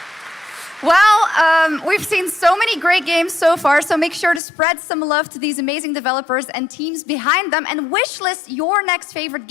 Well, we've seen so many great games so far, so make sure to spread some love to these amazing developers and teams behind them, and wishlist your next favorite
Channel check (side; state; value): right; drops out; at 4.4 s